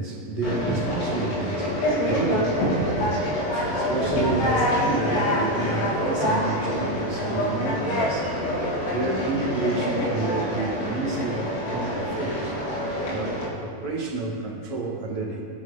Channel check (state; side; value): late; right; 21 ms